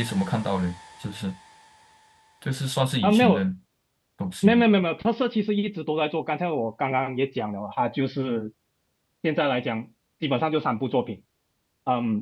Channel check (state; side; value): identical; both; correlation 1.00